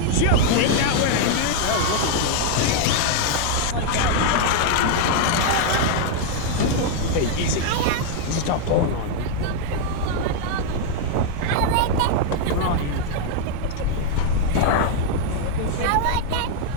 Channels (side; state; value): both; different; correlation 0.00